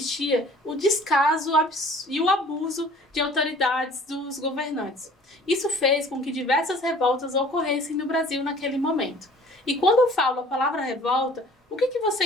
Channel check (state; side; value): normal; both; correlation 0.50